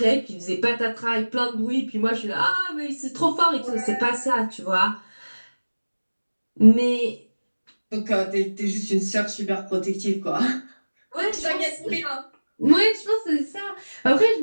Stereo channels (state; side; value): inverted; both; correlation -1.00